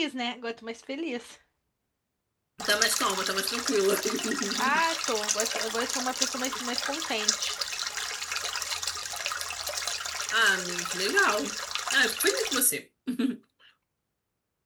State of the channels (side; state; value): both; identical; correlation 1.00